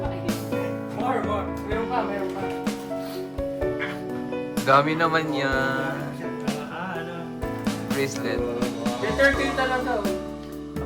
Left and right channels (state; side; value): identical; both; correlation 1.00